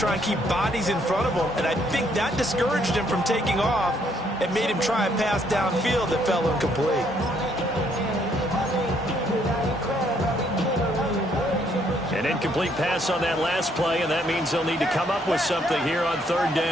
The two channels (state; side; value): normal; both; correlation 0.69